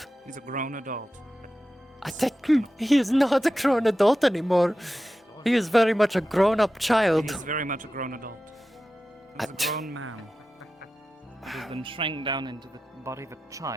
He's a grown adult. I think he is not a grown adult anymore. He is very much a grown-up child. He's very much a grown adult. He's a grown man. Who's been shrank down into the body of a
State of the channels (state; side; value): normal; both; correlation 0.93